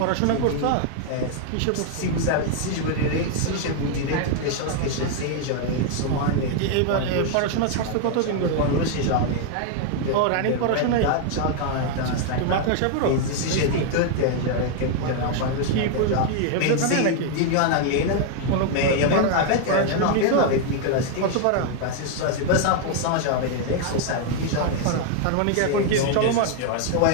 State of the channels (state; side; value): different; both; correlation 0.00